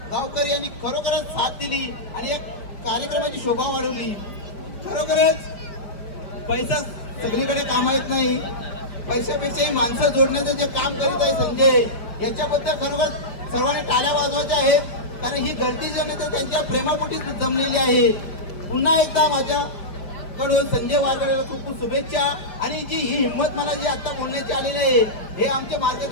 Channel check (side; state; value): right; late; 5.0 ms